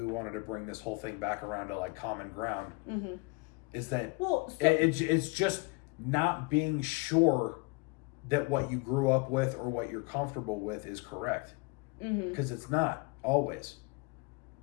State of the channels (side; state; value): right; quieter; 28.0 dB